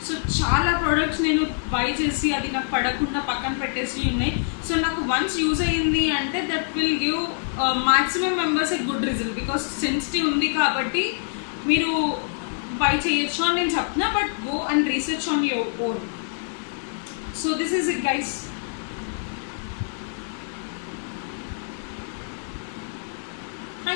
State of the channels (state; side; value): silent; right; digital silence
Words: సో చాలా ప్రోడక్ట్స్ నేను బై చేసి అది నాకు పడకుండా పక్కన పెట్టేసి ఉన్నాయి. సో నాకు వన్స్ యూజ్ అయ్యింది అంటే that will give maximum members a good result. Because sensitive ఉంది కాబట్టి మీరు బై చేయొచ్చు అని నేను చెప్తున్నా. But go and research on your own. So this is it guys.